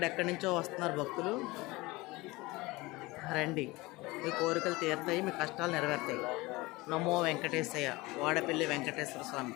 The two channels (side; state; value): right; quieter; 22.0 dB